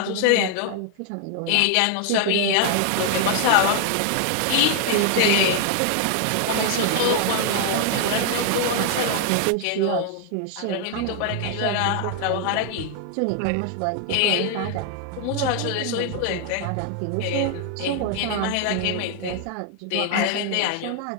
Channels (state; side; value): different; both; correlation 0.00